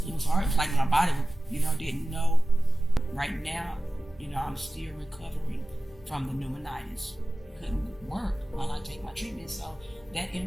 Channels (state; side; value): normal; both; correlation 0.96